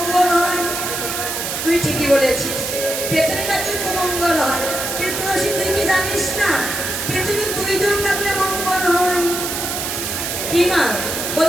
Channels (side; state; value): right; noise; hiss, 3 dB below the sound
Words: বলেছিস পেছনে ডাকলে মঙ্গল হয়, কিন্তু তুলসী তুই কি জানিস না পেছনে দুইজন ডাকলে মঙ্গল হয়? কি মা